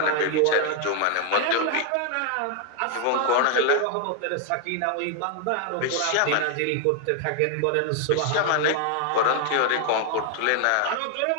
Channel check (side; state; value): both; different; correlation 0.00